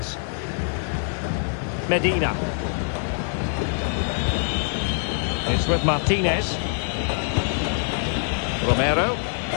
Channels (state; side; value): silent; right; digital silence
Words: Medina. It's with Martinez. Romero.